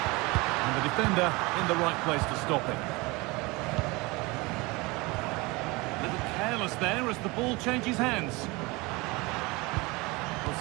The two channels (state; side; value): quieter; left; 24.4 dB